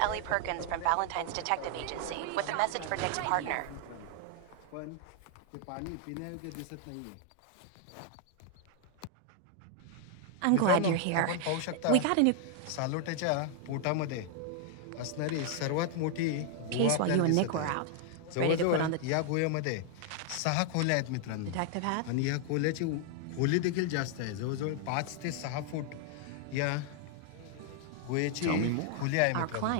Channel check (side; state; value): both; different; correlation 0.00